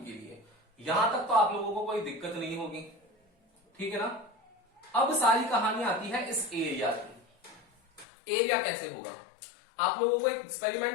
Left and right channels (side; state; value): right; drops out; at 8.1 s